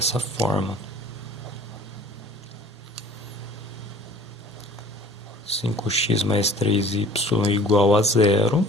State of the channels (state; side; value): normal; both; correlation 0.48